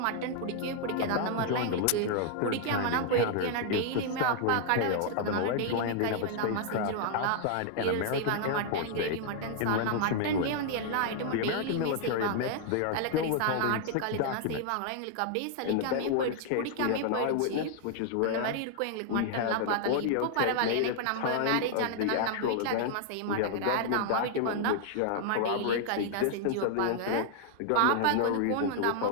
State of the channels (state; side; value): different; both; correlation -0.01